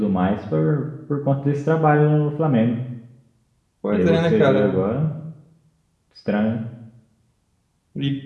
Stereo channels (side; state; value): both; identical; correlation 1.00